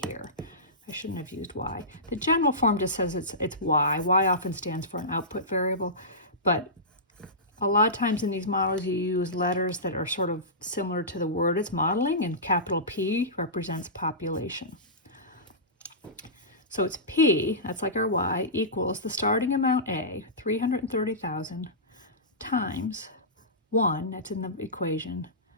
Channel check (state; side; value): normal; both; correlation -0.20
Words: here. I shouldn't have used Y. The general form just says it's Y. Y often stands for an output variable, but a lot of times in these models, you use letters that are sort of similar to the word it's modeling, and capital P represents population. So it's P, that's like our Y, equals the starting amount A, 330,000, times 1, that's in the equation,